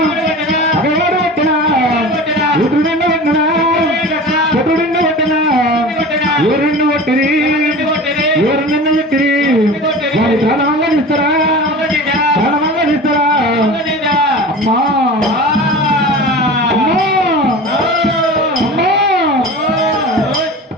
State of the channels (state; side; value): normal; both; correlation 0.35